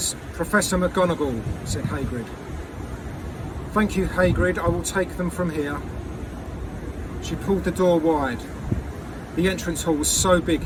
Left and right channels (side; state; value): both; identical; correlation 1.00